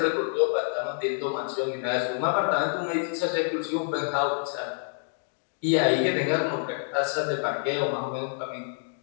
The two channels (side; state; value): right; silent; digital silence